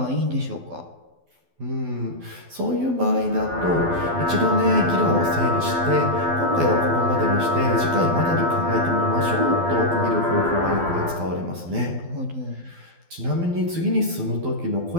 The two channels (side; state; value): left; late; 12 ms